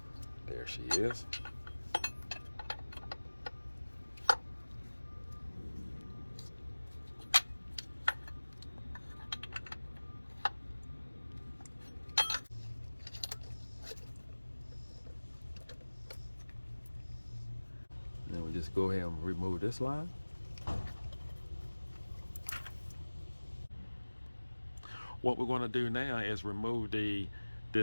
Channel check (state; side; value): inverted; both; correlation -1.00